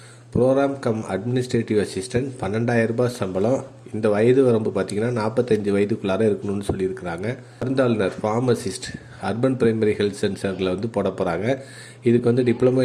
ப்ரோக்ராம் கம் அட்மினிஸ்ட்ரேட்டிவ் அசிஸ்டண்ட் 12,000 ரூபாய் சம்பளம். இந்த வயது வரம்பு பார்த்திங்கன்னா 45 வயதுக்குள்ளார இருக்கணும்னு சொல்லியிருக்கிறாங்க. மருந்தாளுநர் ஃபார்மசிஸ்ட் அர்பன் பிரைமரி ஹெல்த் சென்டரில் போட போகிறாங்க. இதுக்கு டிப்ளமோ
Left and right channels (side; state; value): both; identical; correlation 1.00